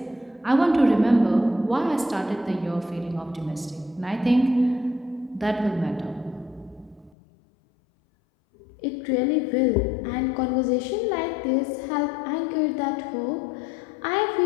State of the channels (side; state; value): right; drops out; at 7.1 s